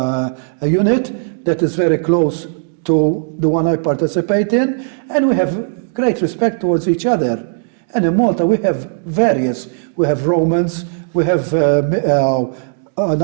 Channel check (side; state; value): left; silent; digital silence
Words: unit that is very close to the one I participate in, and we have great respect towards each other. And in Malta we have various. We have Romans, we have